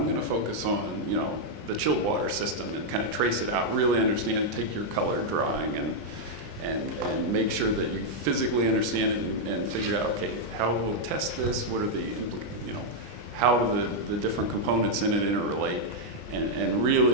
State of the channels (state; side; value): late; left; 20 ms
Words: going to focus on, the chilled water system and kind of trace it out, really understand it, take your color drawing and make sure that you physically understand it and figure out, okay, how we'll test this, what are the, how do the different components in it interrelate, and